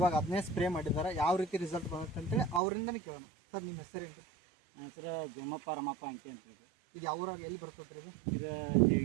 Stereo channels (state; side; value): drops out; left; at 2.6 s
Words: ಅದನ್ನೇ ಸ್ಪ್ರೇ ಮಾಡಿದ್ದಾರೆ. ಯಾವ ರೀತಿ ರಿಸಲ್ಟ್ ಬರುತ್ತೆ ಅಂತೇಳಿ ಅವರಿಂದನೇ ಕೇಳೋಣ. ಸರ್ ನಿಮ್ಮ ಹೆಸರೇನು ರೀ? ನನ್ನ ಹೆಸರು ಜಮ್ಮಪ್ಪ ರಮಪ್ಪ ಅಂಕಿ ಅಂತ ಹೇಳಿ. ಇದು ಯಾವ ಊರಾಗ ಎಲ್ಲಿ ಬರ್ತದೆ ರೀ? ಇದು